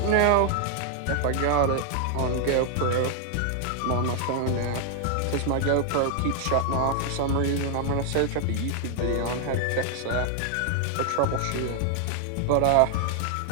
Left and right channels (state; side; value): different; both; correlation 0.00